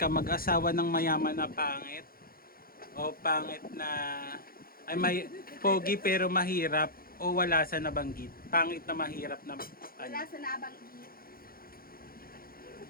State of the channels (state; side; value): late; right; 0.43 ms